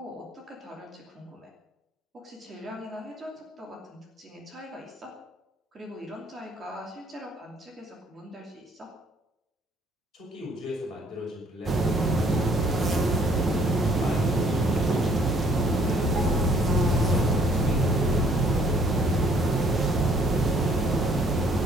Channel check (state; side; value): normal; both; correlation 0.62